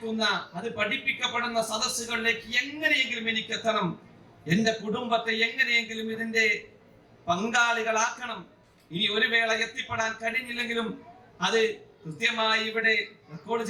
അത് പഠിപ്പിക്കപ്പെടുന്ന സദസ്സുകളിലേക്ക് എങ്ങനെയെങ്കിലും എനിക്ക് എത്തണം. എന്റെ കുടുംബത്തെ എങ്ങനെയെങ്കിലും ഇതിന്റെ പങ്കാളികളാക്കണം. ഇനി ഒരു വേള എത്തിപ്പെടാൻ കഴിഞ്ഞില്ലെങ്കിലും അത് കൃത്യമായി ഇവിടെ റെക്കോർഡ്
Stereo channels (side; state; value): both; identical; correlation 1.00